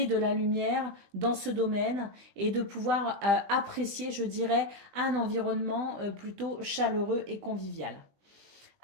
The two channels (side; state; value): left; late; 20 ms